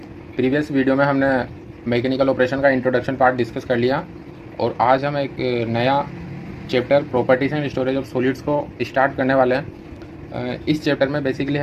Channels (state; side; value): identical; both; correlation 1.00